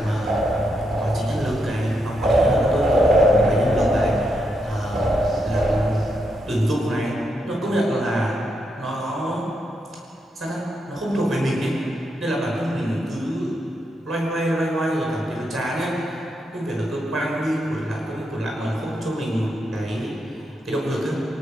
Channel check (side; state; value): both; normal; correlation 0.81